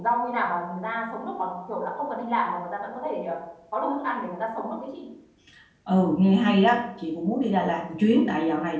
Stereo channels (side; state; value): both; identical; correlation 1.00